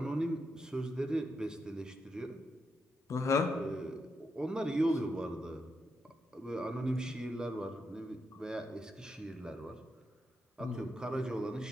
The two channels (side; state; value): both; normal; correlation 0.83